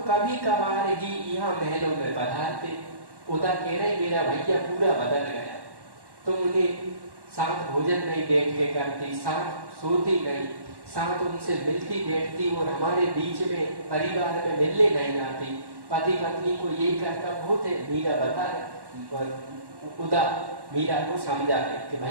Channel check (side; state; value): left; late; 1.1 ms